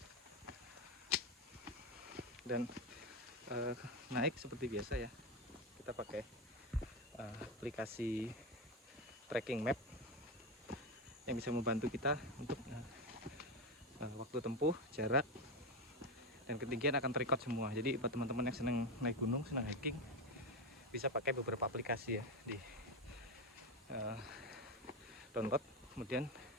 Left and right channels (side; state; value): both; normal; correlation 0.14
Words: Dan naik seperti biasa ya, kita pakai aplikasi tracking map yang bisa membantu kita untuk waktu tempuh, jarak, dan ketinggian akan terrecord semua. Jadi buat teman-teman yang senang naik gunung, senang hiking, bisa pakai beberapa aplikasi ya, di download, kemudian